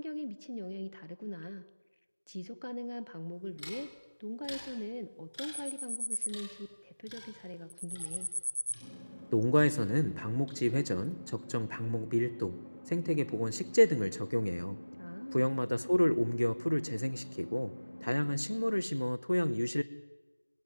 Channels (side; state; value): both; inverted; correlation -1.00